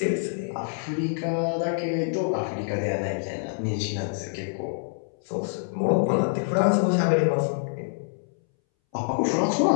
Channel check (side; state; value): right; silent; 61 dB below the other